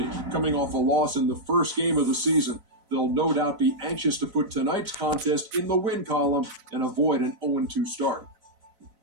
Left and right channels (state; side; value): late; left; 4.0 ms